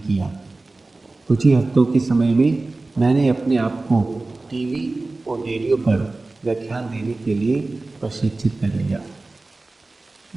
किया। कुछ ही हफ्तों के समय में मैंने अपने आप को टीवी और रेडियो पर व्याख्यान देने के लिए प्रशिक्षित कर लिया,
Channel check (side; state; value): left; quieter; 3.2 dB